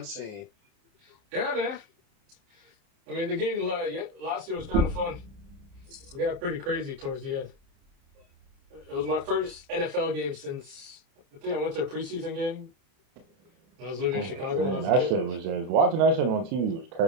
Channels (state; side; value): late; left; 30 ms